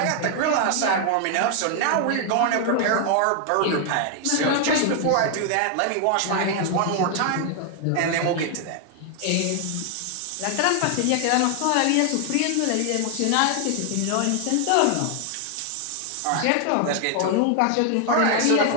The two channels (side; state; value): both; different; correlation 0.00